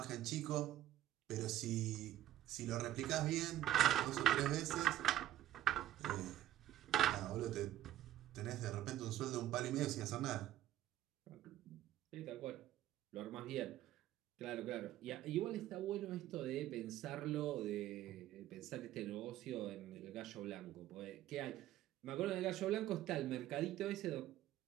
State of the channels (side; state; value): left; quieter; 13.3 dB